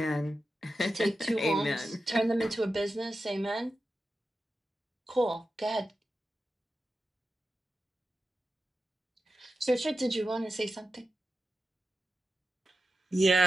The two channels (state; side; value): normal; both; correlation 0.91